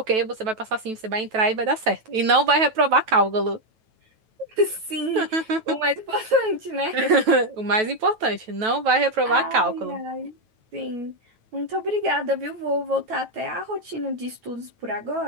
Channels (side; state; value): left; late; 9.2 ms